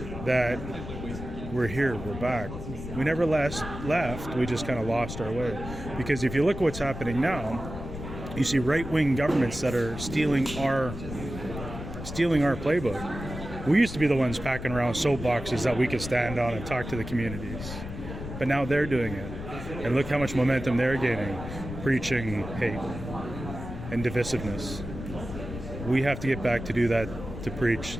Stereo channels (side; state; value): left; noise; rumble, 9 dB below the sound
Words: that we're here, we're back. We never left, we just kind of lost our way. Because if you look at what's happening now, you see right-wing governments that are stealing our playbook. We used to be the ones packing around soapboxes that we could stand on and talk to the communities. But now they're doing it. And look how much momentum they're gaining, preaching hate and divisiveness. We have to get back to do that, to preach